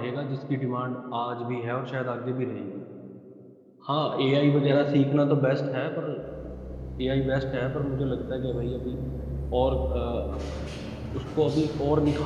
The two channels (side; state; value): both; identical; correlation 1.00